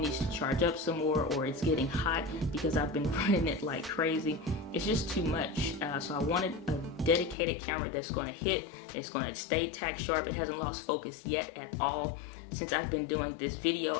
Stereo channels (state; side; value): drops out; right; at 7.4 s